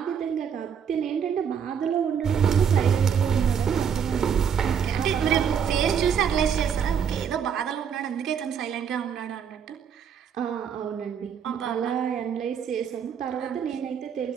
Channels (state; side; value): quieter; left; 7.6 dB